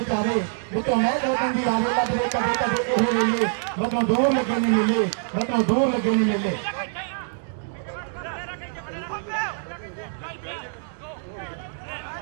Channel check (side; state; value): left; silent; digital silence